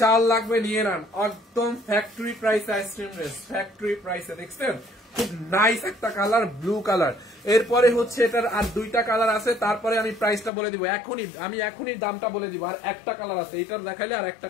চাল লাগবে নিয়ে নেন, একদম factory price ice cream dress, factory প্রাইসে। দেখছেন খুব নাইস একটা কালার, ব্লু কালার। এরপরে হচ্ছে এটার আর দুইটা কালার আছে, তারপরে আমি প্রাইসটা বলে দিব এখনই দামটা বলে দিব। আর একটা কালার আছে, এইটার দেখাইলে আর একটা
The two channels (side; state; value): right; drops out; at 10.5 s